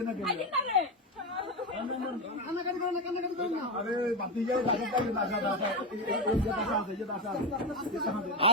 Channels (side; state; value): both; normal; correlation 0.12